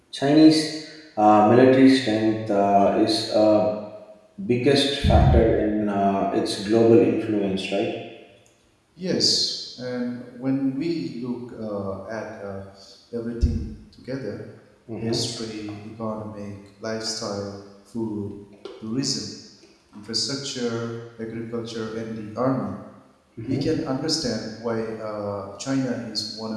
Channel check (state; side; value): identical; both; correlation 1.00